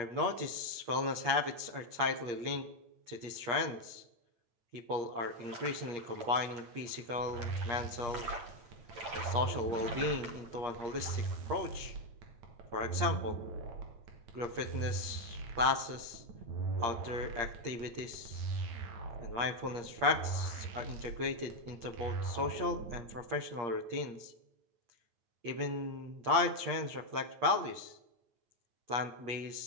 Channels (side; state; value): left; late; 8.5 ms